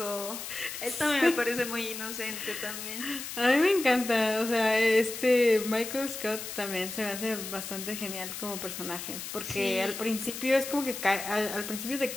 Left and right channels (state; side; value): noise; left; hiss, 8 dB below the sound